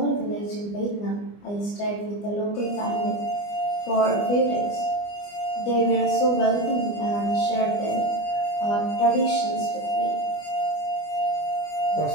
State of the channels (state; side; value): late; right; 24 ms